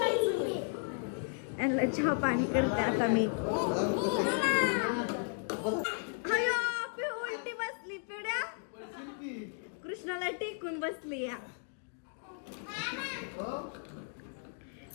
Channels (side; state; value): right; silent; 55 dB below the other